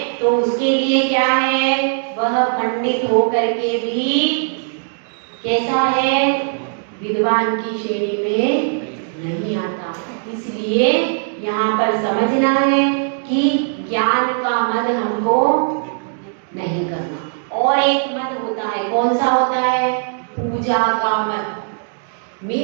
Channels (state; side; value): silent; left; digital silence